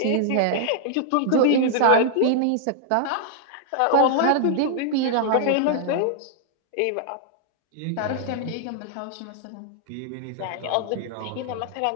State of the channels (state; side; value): different; both; correlation -0.01